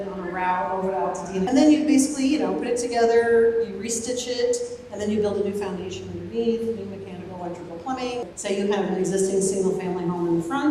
on a route over to Altadena. And then you basically, you know, put it together, you restitch it, and then you build a new foundation underneath, new mechanical, electrical, plumbing. Say you have an existing single-family home in the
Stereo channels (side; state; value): both; identical; correlation 1.00